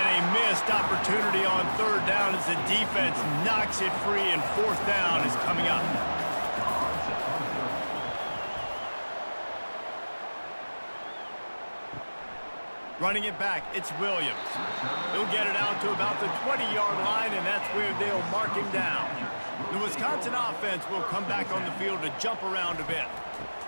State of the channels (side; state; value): both; inverted; correlation -1.00